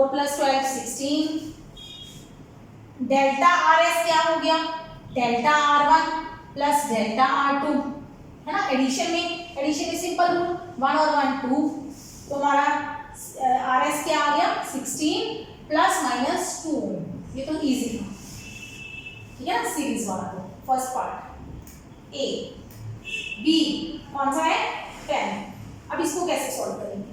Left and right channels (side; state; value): both; identical; correlation 1.00